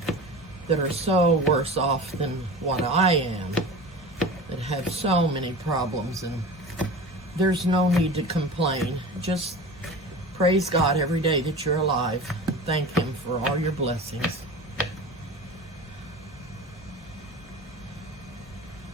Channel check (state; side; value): normal; both; correlation 0.34